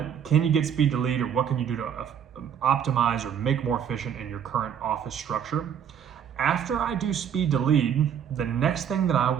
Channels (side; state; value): left; quieter; 8.5 dB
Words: Can you get speed to lead, or what can you do to optimize or make more efficient in your current office structure? After I do speed to lead, the next thing that I